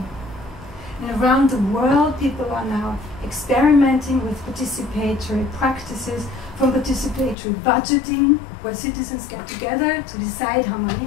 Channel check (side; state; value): right; drops out; at 7.4 s